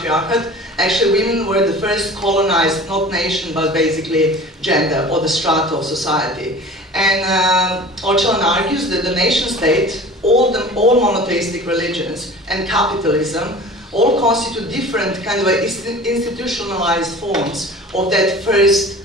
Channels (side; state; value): both; normal; correlation 0.41